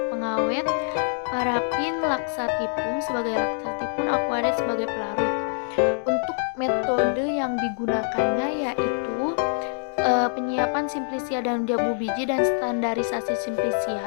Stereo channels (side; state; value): right; silent; digital silence